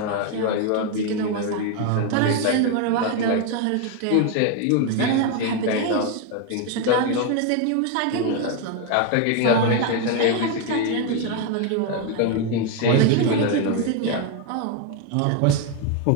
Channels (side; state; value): both; different; correlation 0.01